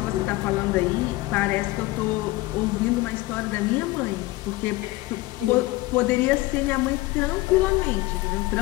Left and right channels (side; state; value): right; quieter; 19.7 dB